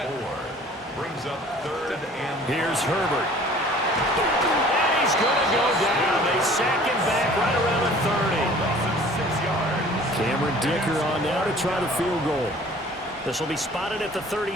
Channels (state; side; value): normal; both; correlation 0.50